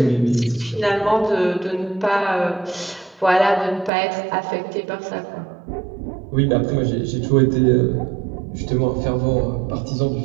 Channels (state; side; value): drops out; left; at 3.9 s